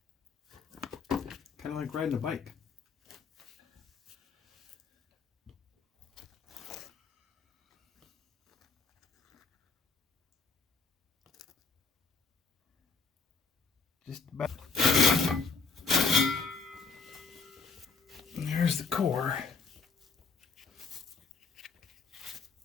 Kind of like riding a bike. Just about. And there's the core.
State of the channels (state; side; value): quieter; right; 4.8 dB